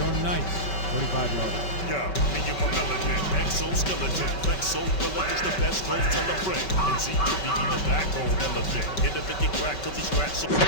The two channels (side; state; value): right; late; 5.3 ms